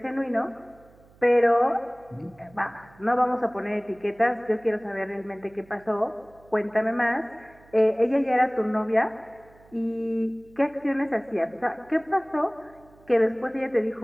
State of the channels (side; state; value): right; noise; hum, 27 dB below the sound